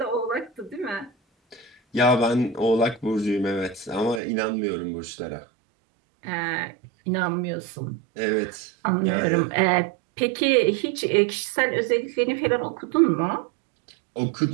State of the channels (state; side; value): drops out; left; at 4.2 s